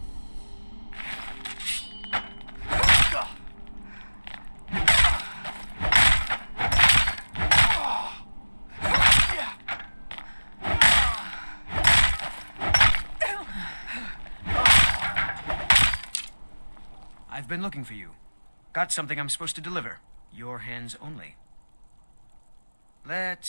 I've been looking for you. Got something I'm supposed to deliver. Your hands only. Let's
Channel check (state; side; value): inverted; both; correlation -1.00